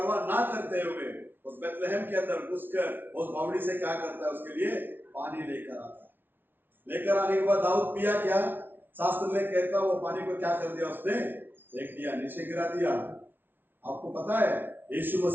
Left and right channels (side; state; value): left; late; 0.098 ms